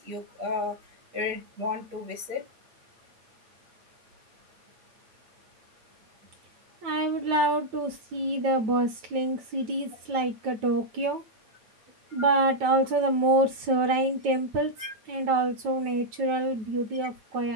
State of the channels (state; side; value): late; left; 9.1 ms